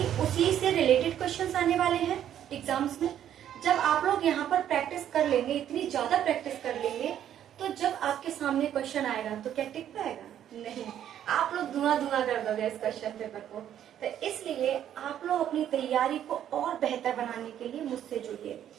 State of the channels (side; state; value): left; quieter; 10.5 dB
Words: उसी से रिलेटेड क्वेश्चंस आने वाले हैं एग्जाम्स में। जब आप लोग यहाँ पर प्रैक्टिस कर लेंगे, इतनी ज्यादा प्रैक्टिस कर लेंगे, तो जब आपके सामने क्वेश्चन आएगा तो क्या टिक पाएगा? नहीं, आप लोग धुआं धुआं कर दोगे इस क्वेश्चन पेपर को। तो इसलिए आप लोग अपनी तैयारी को और बेहतर बनाने के लिए मुझसे जुड़िए।